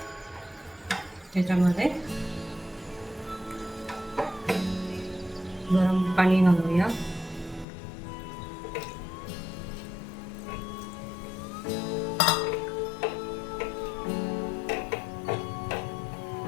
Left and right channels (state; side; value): drops out; right; at 7.7 s